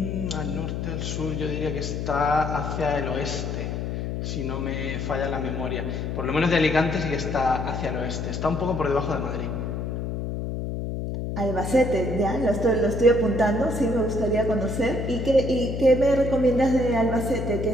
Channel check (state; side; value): noise; left; hum, 3 dB below the sound